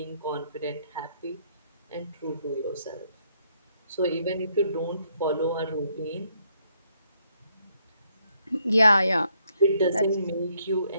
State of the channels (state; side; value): inverted; both; correlation -0.72